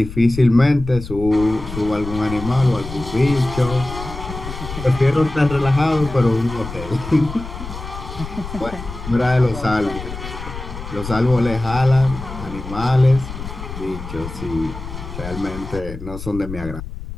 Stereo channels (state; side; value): noise; left; rumble, 10 dB below the sound